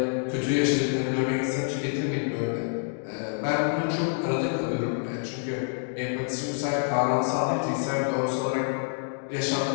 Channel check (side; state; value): right; silent; digital silence